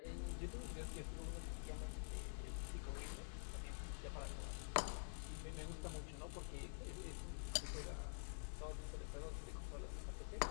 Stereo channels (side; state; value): right; silent; digital silence